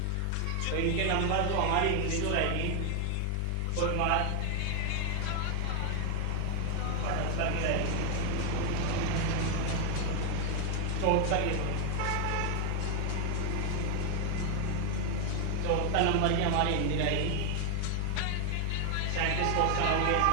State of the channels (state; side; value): different; both; correlation 0.00